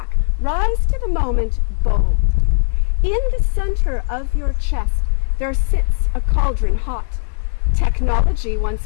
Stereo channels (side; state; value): right; silent; digital silence